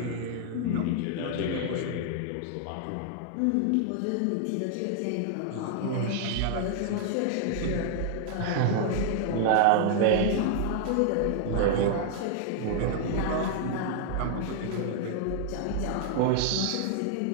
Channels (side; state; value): both; different; correlation 0.00